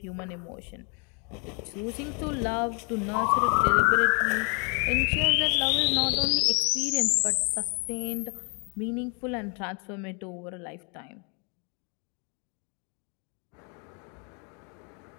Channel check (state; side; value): quieter; right; 37.6 dB